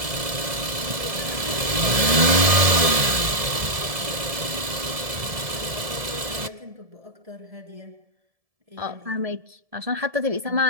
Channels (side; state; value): left; late; 1.7 ms